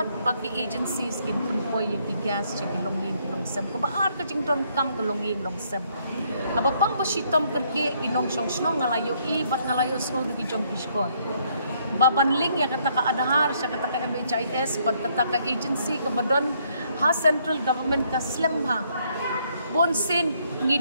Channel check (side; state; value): both; inverted; correlation -0.70